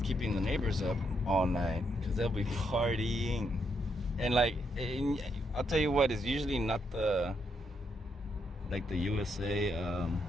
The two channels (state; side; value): normal; both; correlation 0.77